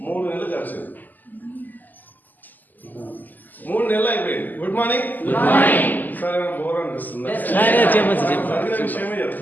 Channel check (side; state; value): right; late; 0.085 ms